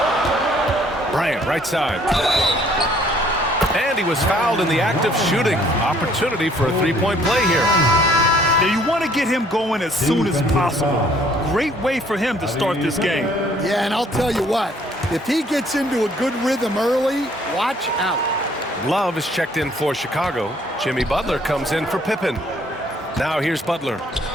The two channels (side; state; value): both; normal; correlation 0.61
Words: Bryant, right side. And he was fouled in the act of shooting. Opportunity for a three-point play here. Now you want to get him going as soon as possible. Great way for him to start this game. Yeah, and I'll tell you what, if he gets into a good rhythm early, watch out. Love is checked in for Chicago. Jimmy Butler comes in for Pippen. Now here's Butler.